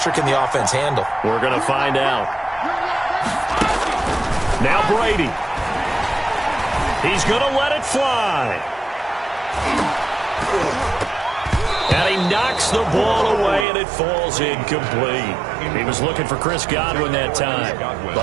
can the offense handle? We're going to find out. Now Brady. He's going to let it fly. And he knocks the ball away, and it falls incomplete. He was looking for Chris Godwin that time,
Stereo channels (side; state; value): left; drops out; at 13.7 s